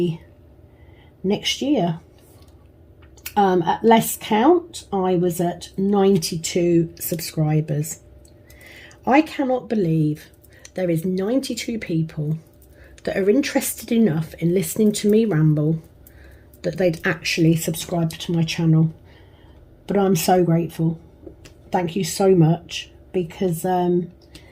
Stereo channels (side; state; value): both; identical; correlation 1.00